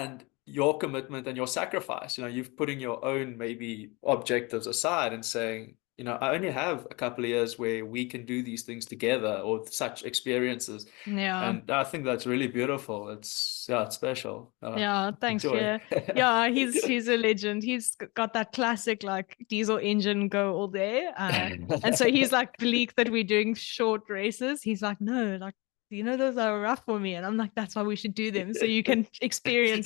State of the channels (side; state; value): right; quieter; 26.1 dB